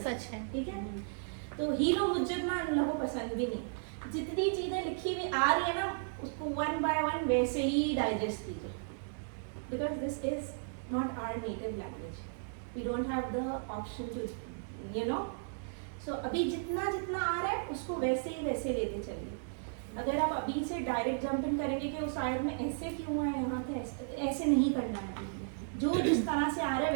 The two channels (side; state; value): left; silent; digital silence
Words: سچ ہے. ٹھیک ہے تو ہیرو حجت نا ان لوگوں کو پسند بھی نہیں. جتنی چیزیں لکھی ہوئی آ رہی ہے نا اس کو 1 by 1 ویسے ہی ڈائجسٹ کیجیے. Because this is not our native language. We don't have the option to you know. So ابھی جتنا آ رہا ہے اس کو ویسے ہی ویسے لیتے چلیے. اگر آپ ابھی سے ڈائریکٹ جمپ ان کریں گے کہ اس آیت میں ایسے کیوں ہے یہاں پہ ایسے نہیں کرنا ہے. جو جس طرح سے آ رہا ہے